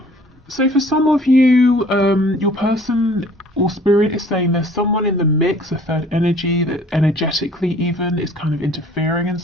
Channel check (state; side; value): normal; both; correlation 0.53